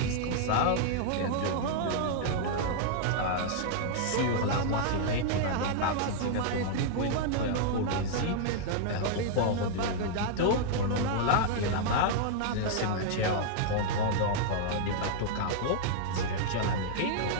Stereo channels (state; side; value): different; both; correlation -0.01